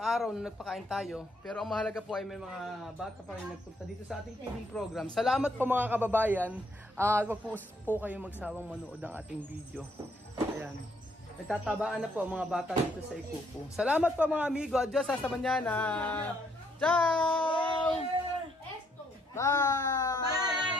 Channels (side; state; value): both; normal; correlation 0.70